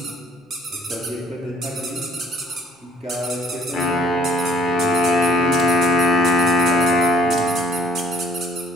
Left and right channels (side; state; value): both; normal; correlation 0.59